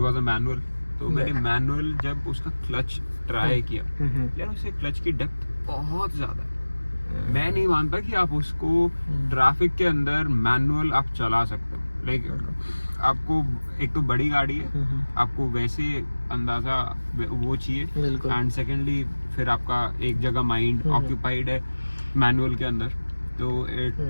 अ मैनुअल। तो मैंने मैनुअल जब उसका क्लच ट्राई किया, यार उससे क्लच की डेप्थ बहुत ज्यादा है। मैं नहीं मानता कि आप उसको ट्रैफिक के अंदर मैनुअल आप चला सकते हो। लाइक आपको एक तो बड़ी गाड़ी है, आपको वैसे अंदाजा वो चाहिए, एंड सेकेंडली फिर आपका एक जगह माइंड ऑक्यूपाइड है मैनुअल के अंदर, तो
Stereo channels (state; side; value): inverted; both; correlation -1.00